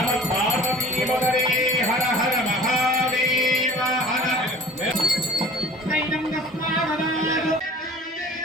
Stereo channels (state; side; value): normal; both; correlation 0.44